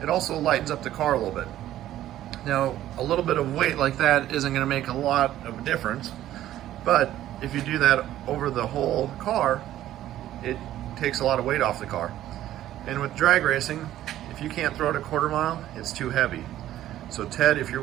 it also lightens up the car a little bit. Now, a little bit of weight like that isn't going to make a lot of difference, but if you do that over the whole car, it takes a lot of weight off the car. And with drag racing, if you can't throw it a quarter mile, it's too heavy. So Ted, if you're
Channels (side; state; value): left; quieter; 13.1 dB